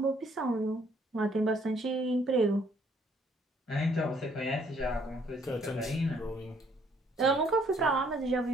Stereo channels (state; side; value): normal; both; correlation 0.65